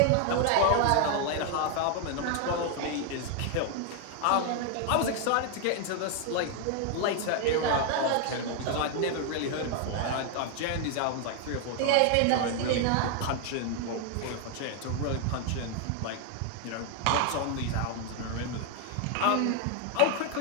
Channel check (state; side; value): different; both; correlation 0.00